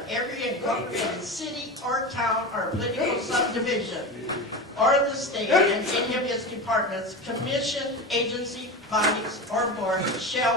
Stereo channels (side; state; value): both; normal; correlation 0.25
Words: every incorporated city or town or political subdivision, or the state and any of its departments, commission, agency, bodies, or boards